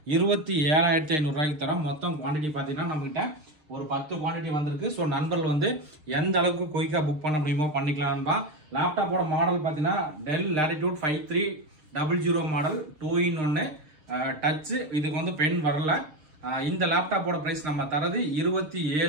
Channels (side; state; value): left; late; 6.5 ms